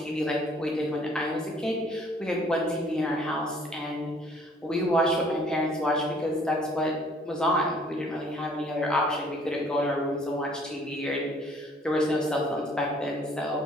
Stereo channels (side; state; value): both; normal; correlation 0.58